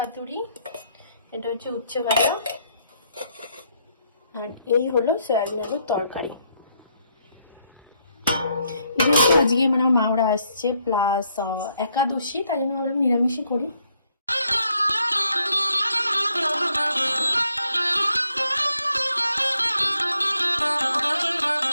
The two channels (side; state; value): both; inverted; correlation -0.73